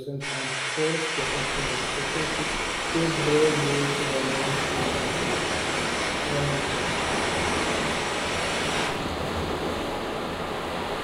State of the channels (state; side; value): identical; both; correlation 1.00